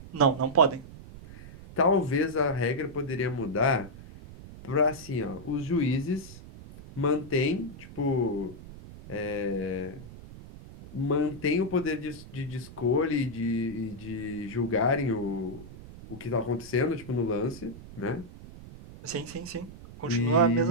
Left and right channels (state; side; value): noise; right; rumble, 16 dB below the sound